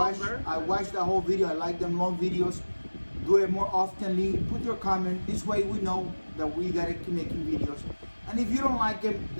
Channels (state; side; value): inverted; both; correlation -1.00